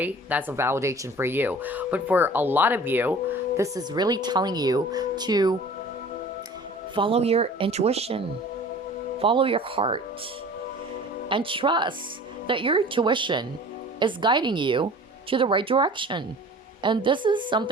that's a validation for you. But for a lot of you, this is really telling you to follow your intuition, follow your heart, and trust that your intuition is guiding you to the right direction. And this is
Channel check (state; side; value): normal; both; correlation 0.44